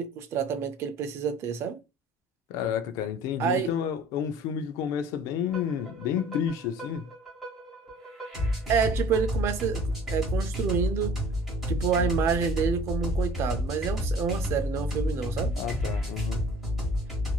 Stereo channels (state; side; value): normal; both; correlation 0.49